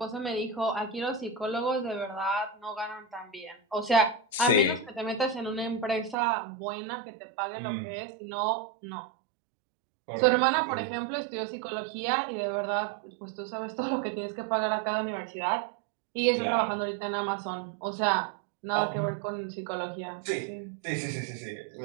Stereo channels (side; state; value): left; drops out; at 6.2 s